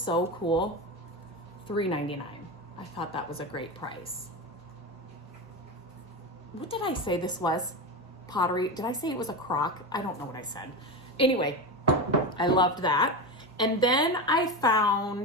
cool? $3.99. I thought that was a great price. What did I say this was? Pottery. Did I say it was a crock? I don't know what I said. Anyway, I loved that. And then I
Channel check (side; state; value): both; normal; correlation 0.20